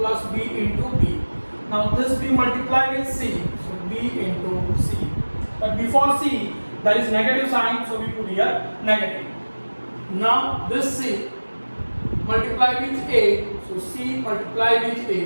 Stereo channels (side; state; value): both; inverted; correlation -1.00